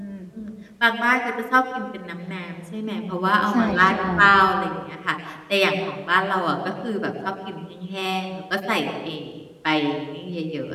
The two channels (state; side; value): identical; both; correlation 1.00